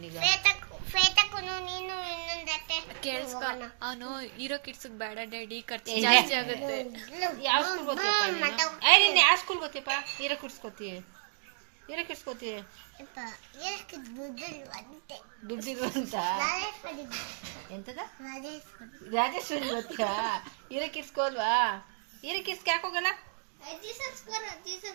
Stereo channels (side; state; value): left; silent; digital silence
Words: ಶ್ವೇತಕ್ಕೂನು ನೀನು ಇನ್ನೊಂದು ಹತ್ತೆ ಕೇಳಿಸ್ಕೊ ಅವನು ಹೀರೋ ಕಿಡ್ಸ್ ಬೇಡ ಡ್ಯಾಡಿ ಖರ್ಚು ಜಾಸ್ತಿ ಆಗುತ್ತೆ. ಯಾವ ಸ್ಕೂಲ್ ಗೊತ್ತಿಯಪ್ಪ ಏ ನೀನು ಯಾವ ಸ್ಕೂಲ್ ಗೊತ್ತಿಯಪ್ಪ ಹೀರೋ ಕಿಡ್ಸ್ ಗೊತ್ತೀಯ ದುಡ್ಡಿರು ಅಂತ ಎಂತದ ರಾಜೇಶ್ವರಿ ಗೊತ್ತಿಯಾ ಹೀರೋ ಕಿಡ್ಸ್ಗೆ ಹೋಲ್ವಾ ಹೀರೋ ಕಿಡ್ಸ್ಗೆ ಯಾಕೆ ಹೋಗಲ್ಲ